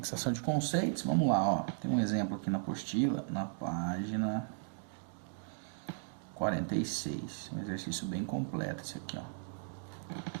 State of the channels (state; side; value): silent; left; digital silence